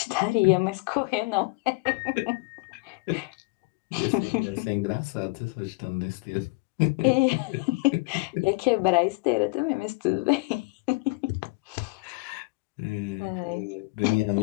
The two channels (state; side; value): quieter; right; 26.4 dB